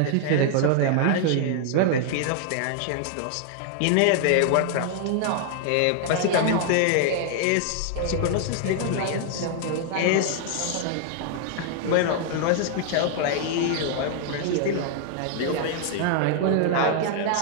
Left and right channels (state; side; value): different; both; correlation 0.00